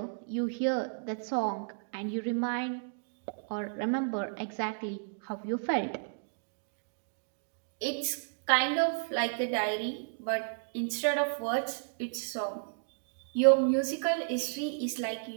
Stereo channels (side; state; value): left; silent; digital silence